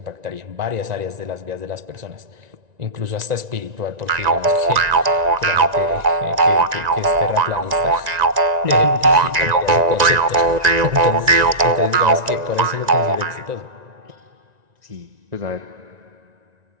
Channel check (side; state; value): left; late; 1.9 ms